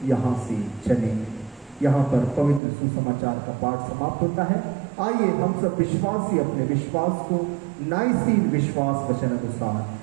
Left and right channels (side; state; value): left; drops out; at 2.6 s